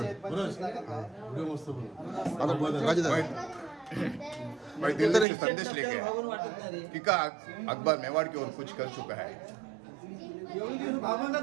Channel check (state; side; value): drops out; left; at 5.2 s